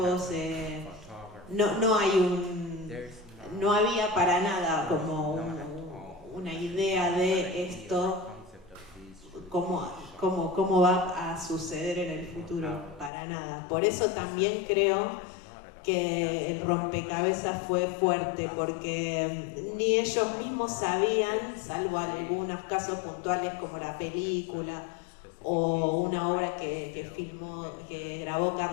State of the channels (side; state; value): right; drops out; at 13.1 s